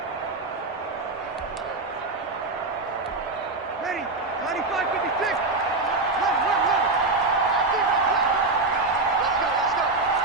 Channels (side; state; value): left; quieter; 3.4 dB